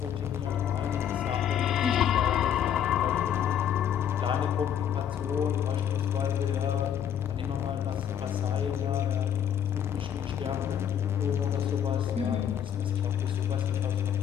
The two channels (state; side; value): quieter; right; 9.2 dB